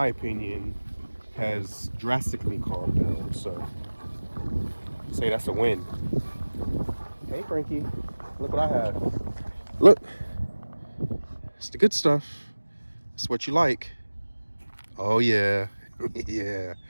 opinion, has drastically calmed down. So say that's a win. Hey Frankie, look what I have. Look, it's the good stuff. It's what you like. Oh yeah. Yeah,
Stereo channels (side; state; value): both; inverted; correlation -1.00